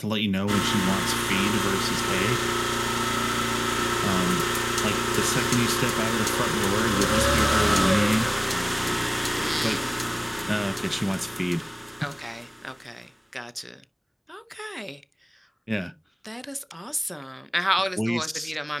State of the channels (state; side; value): identical; both; correlation 1.00